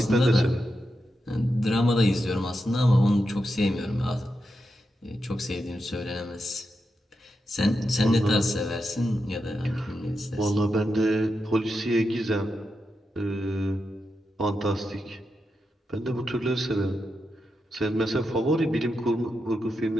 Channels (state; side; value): normal; both; correlation 0.87